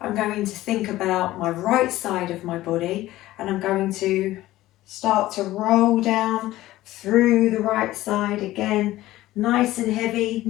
I'm going to think about my right side of my body and I'm going to start to roll down through the right side again, nice and heavy,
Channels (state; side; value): quieter; right; 16.1 dB